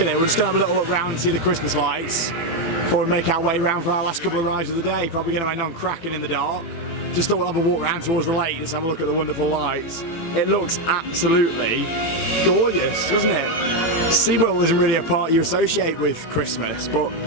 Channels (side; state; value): right; late; 18 ms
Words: it. We're just going to have a little look round and see the Christmas lights before we make our way round for our last couple of rides of the day. Probably going to end on Kraken in the dark. Just thought we'll have a walk round towards the lake, just have a look at the wonderful lights. It looks absolutely gorgeous, doesn't it? SeaWorld isn't really a park you associate with Christmas, but